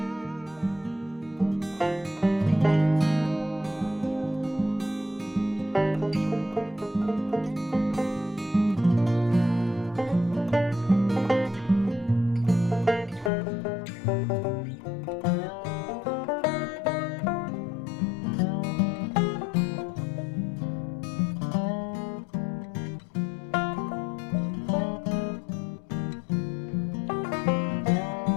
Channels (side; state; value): right; drops out; at 13.3 s